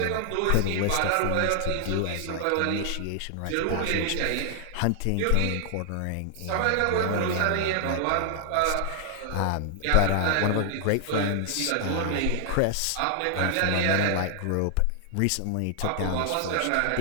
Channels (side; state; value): both; different; correlation 0.00